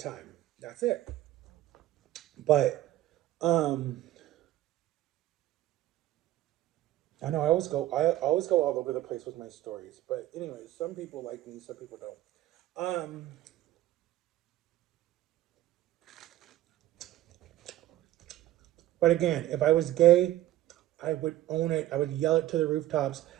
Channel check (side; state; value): left; quieter; 14.7 dB